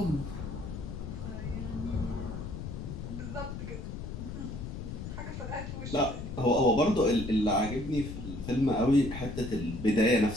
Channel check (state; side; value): noise; left; rumble, 7 dB below the sound